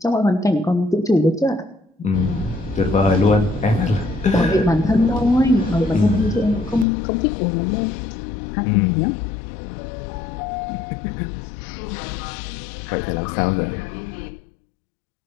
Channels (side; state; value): right; drops out; at 6.9 s